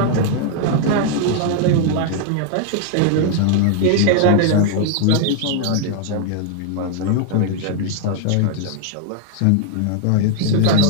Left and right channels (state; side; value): different; both; correlation 0.00